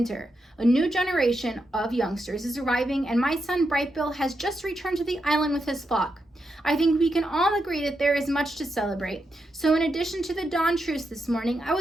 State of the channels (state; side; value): normal; both; correlation 0.85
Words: A new generation of youngsters is arriving, and my son Brightbill has just returned to the island with his flock. I think we can all agree that there is much to celebrate. So in addition to the dawn truce this morning, I